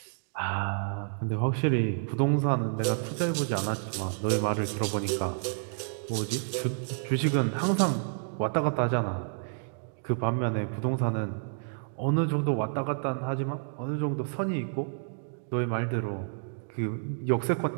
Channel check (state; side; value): silent; left; digital silence